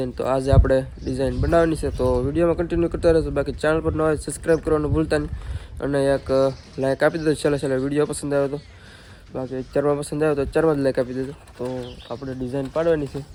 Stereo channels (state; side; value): identical; both; correlation 1.00